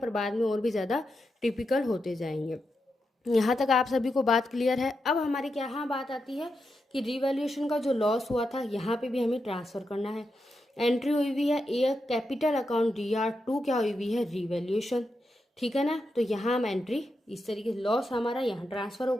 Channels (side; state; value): both; normal; correlation 0.86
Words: बाद में और भी ज़्यादा टिपिकल होते जाएंगे। यहाँ तक आप सभी को बात क्लियर है। अब हमारी क्या यहाँ बात आती है कि रिवैल्यूएशन का जो लॉस हुआ था यहाँ पे भी हमें ट्रांसफ़र करना है। एंट्री हुई हुई है ए कैपिटल अकाउंट DR2 क्या हुई हुई है रिवैल्यूएशन, ठीक है ना। तो यहाँ हम एंट्री इस तरीके से लॉस हमारा यहाँ ट्रांसफ़र